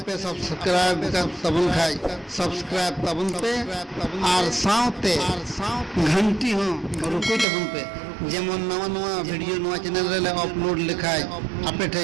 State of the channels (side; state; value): left; drops out; at 7.5 s